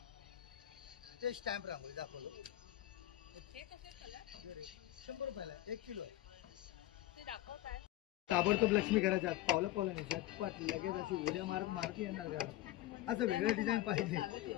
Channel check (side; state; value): right; quieter; 14.9 dB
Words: ते स्टॅम्प रांगोळी दाखवलं, 100 रुपयाला 1 किलो आहे. ताबडतोब लक्ष्मी घराच्या आत पावला पावला नाही, झटपट लगेच अशी उड्या मारत मारत येणार घरात. असं वेगळं डिझाईन पाहिजे.